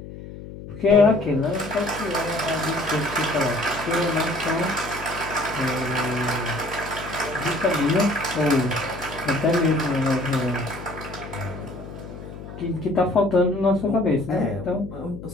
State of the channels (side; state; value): left; noise; hum, 13 dB below the sound